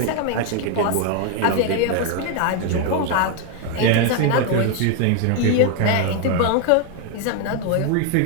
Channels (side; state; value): both; different; correlation 0.01